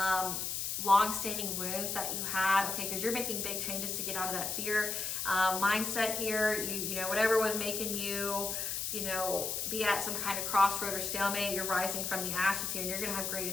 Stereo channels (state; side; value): noise; left; hiss, 2 dB below the sound